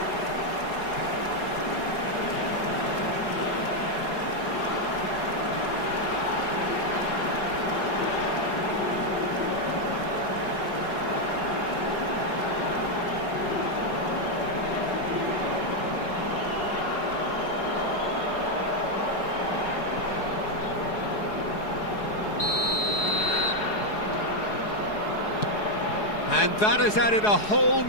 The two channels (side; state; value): right; late; 4.8 ms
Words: And that has added a whole